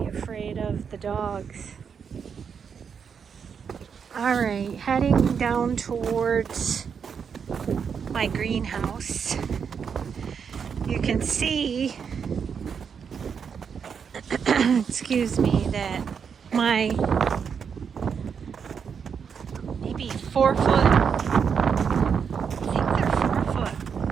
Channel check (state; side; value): quieter; left; 6.7 dB